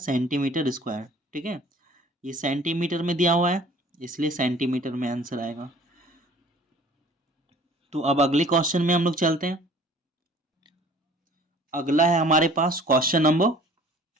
स्क्वायर, ठीक है। ये सेंटीमीटर में दिया हुआ है, इसलिए सेंटीमीटर में आंसर आएगा। तो अब अगले क्वेश्चन में हम लोग चलते हैं। अगला है हमारे पास क्वेश्चन नंबर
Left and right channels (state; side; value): normal; both; correlation 0.50